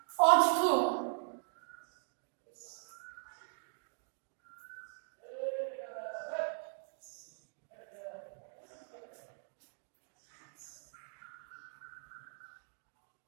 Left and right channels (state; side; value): silent; left; digital silence